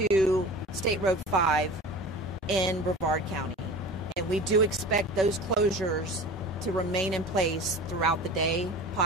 State Road 5 in Brevard County. And we do expect those closures to remain in place throughout the day,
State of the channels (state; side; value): normal; both; correlation 0.36